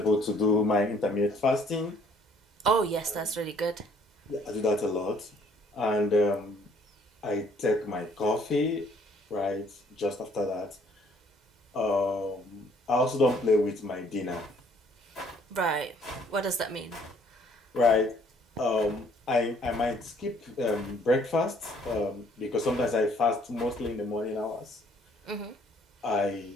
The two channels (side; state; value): both; normal; correlation 0.61